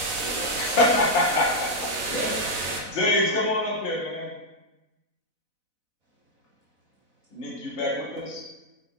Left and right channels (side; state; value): left; late; 4.0 ms